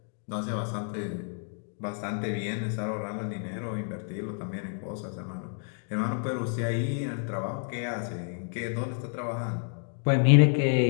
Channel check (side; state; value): right; silent; 58 dB below the other